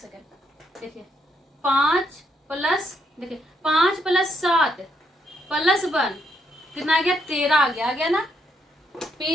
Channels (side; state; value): both; normal; correlation 0.76